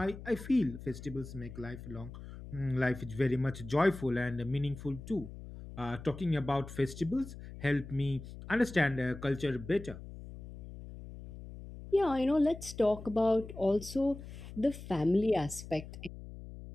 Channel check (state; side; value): noise; left; hum, 13 dB below the sound